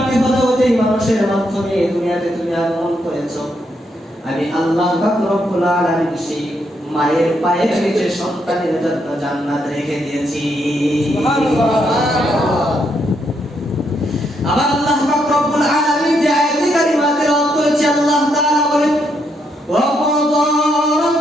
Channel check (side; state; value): both; normal; correlation 0.77